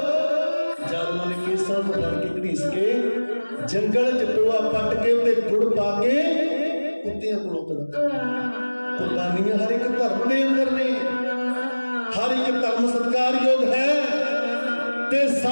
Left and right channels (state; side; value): inverted; both; correlation -1.00